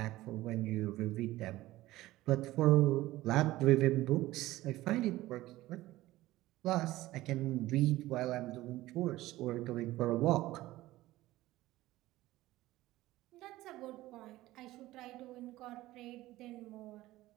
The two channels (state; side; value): quieter; left; 16.9 dB